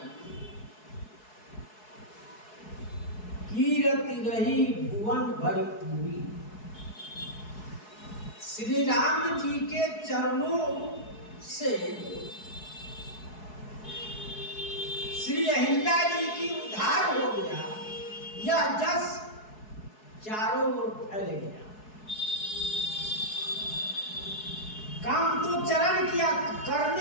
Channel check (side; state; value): right; late; 4.7 ms